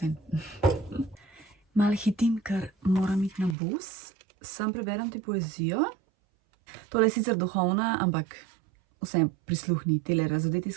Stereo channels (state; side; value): drops out; left; at 3.6 s